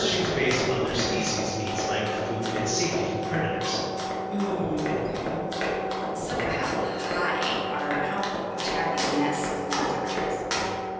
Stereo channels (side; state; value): both; identical; correlation 1.00